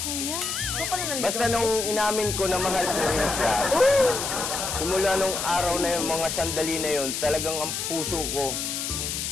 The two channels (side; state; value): left; noise; hiss, 3 dB below the sound